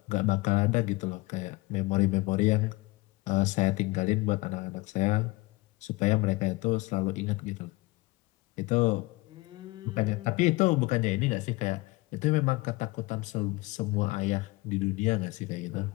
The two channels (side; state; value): right; quieter; 22.4 dB